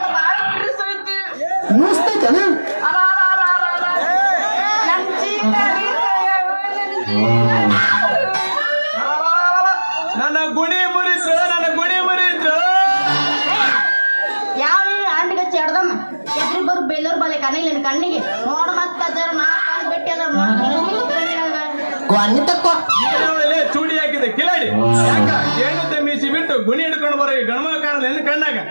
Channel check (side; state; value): both; inverted; correlation -1.00